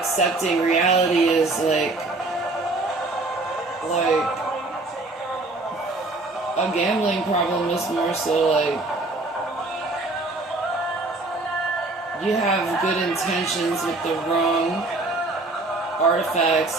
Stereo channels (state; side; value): quieter; left; 3.1 dB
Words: reality as, like, a gambling problem is more so, like, you have good intentions with the wrong artifacts